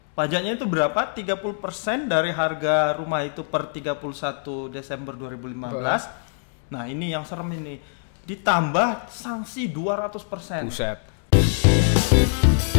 Pajaknya itu berapa? 30% dari harga rumah itu per 31 Desember 2015. Nah, ini yang serem ini. Ditambah sanksi 200%. Buset.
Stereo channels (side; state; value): right; silent; digital silence